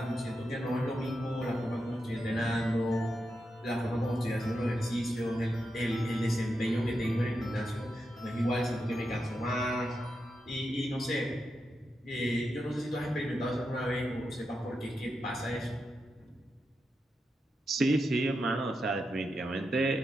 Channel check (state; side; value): normal; both; correlation 0.87